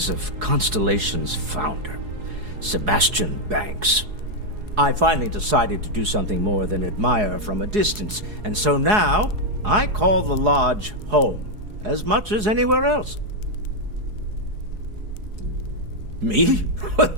of Constellation's founder, Sebastian Banks. I finally decided to do something more than admire from a distance, and so now I call the lodge home as much as anywhere else. Me?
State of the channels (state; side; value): late; left; 4.8 ms